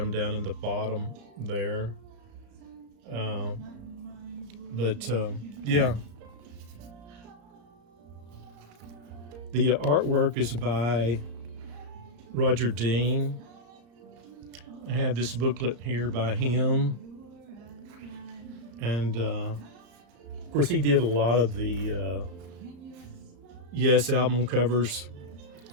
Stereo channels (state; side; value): late; left; 34 ms